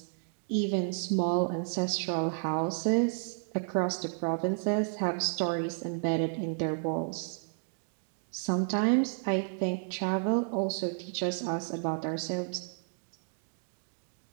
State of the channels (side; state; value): left; silent; digital silence